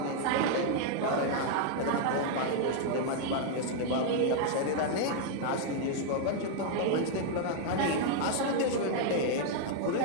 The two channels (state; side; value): different; both; correlation 0.00